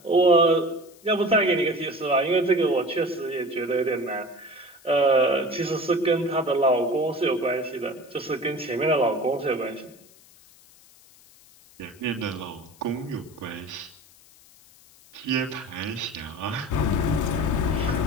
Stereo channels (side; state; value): left; noise; hiss, 26 dB below the sound